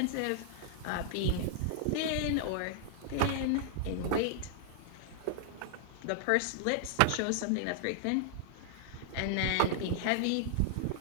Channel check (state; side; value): different; both; correlation -0.01